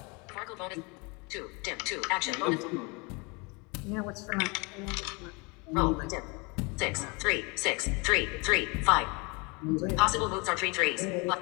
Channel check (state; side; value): quieter; right; 29.2 dB